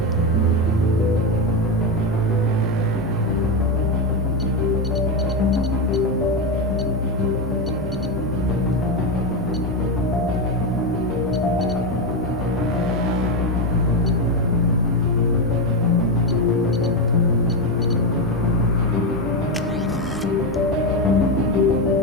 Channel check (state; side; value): normal; both; correlation 0.11